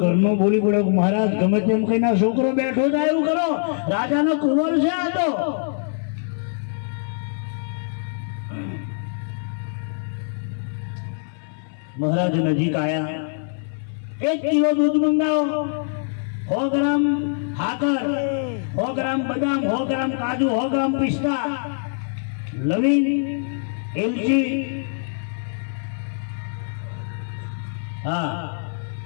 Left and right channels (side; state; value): right; silent; 56 dB below the other